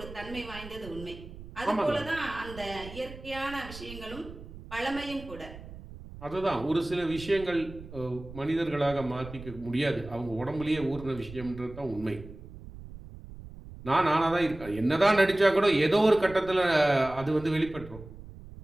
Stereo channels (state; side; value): noise; right; rumble, 15 dB below the sound